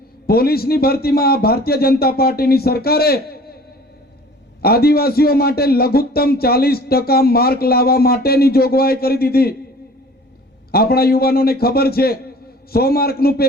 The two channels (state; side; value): normal; both; correlation 0.47